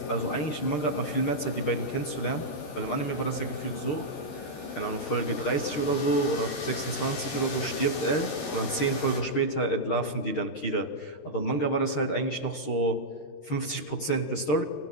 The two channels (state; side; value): late; right; 13 ms